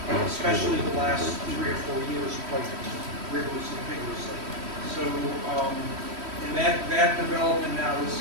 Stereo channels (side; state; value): left; late; 3.1 ms